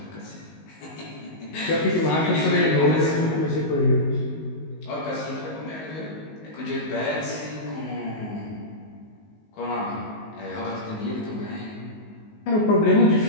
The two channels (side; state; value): right; late; 19 ms